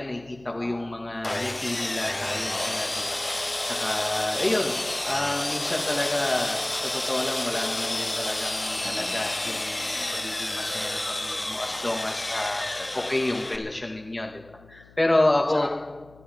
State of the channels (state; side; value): noise; left; hum, 25 dB below the sound